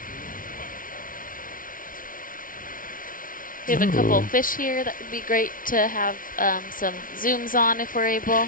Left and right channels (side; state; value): right; late; 0.40 ms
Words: We have a couple of fish here that would be great to have some zooms on if we're